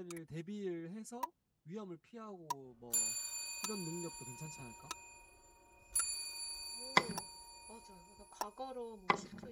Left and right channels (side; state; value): both; identical; correlation 1.00